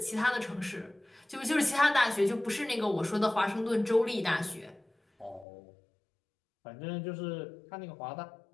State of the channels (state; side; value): drops out; right; at 5.5 s